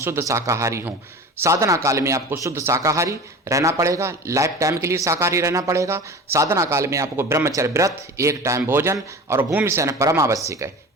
शाकाहारी हों। साधना काल में आपको शुद्ध शाकाहारी रहना पड़ेगा, लाइफ टाइम के लिए शाकाहारी रहना पड़ेगा। साधना काल में आपको ब्रह्मचर्य व्रत, 1 टाइम भोजन और भूमि शयन परम आवश्यक है।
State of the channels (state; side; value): normal; both; correlation 0.35